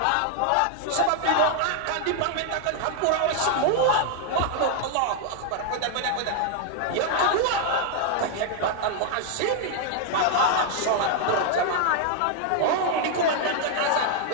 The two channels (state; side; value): different; both; correlation 0.00